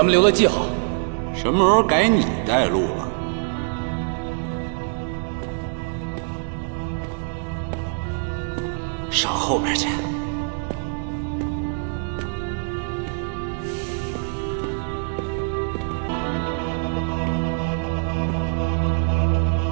们留了记号。什么时候改你带路了？上后边去。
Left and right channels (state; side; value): silent; left; 62 dB below the other